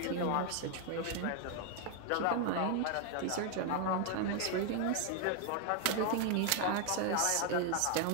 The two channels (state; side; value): different; both; correlation 0.01